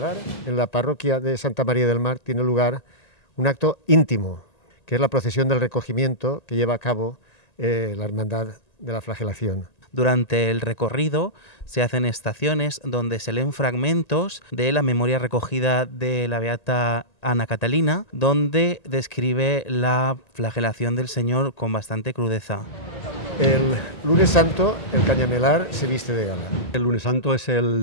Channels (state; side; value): late; right; 1.9 ms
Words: En la parroquia de Santa María del Mar tiene lugar un acto íntimo, que es la procesión del recogimiento que lleva a cabo la Hermandad de la Flagelación. Durante el recorrido se hacen estaciones donde se leen fragmentos de la memoria recogida de la beata Ana Catalina, donde describe la flagelación del Señor con bastante crudeza. El lunes santo, el Cañamelar se viste de gala. El lunes santo es